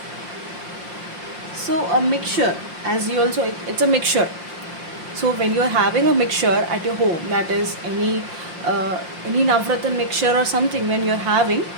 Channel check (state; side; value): late; left; 5.7 ms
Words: So a mixture, as you also, it's a mixture. So when you are having a mixture at your home, that is any Navratan mixture or something, when you are having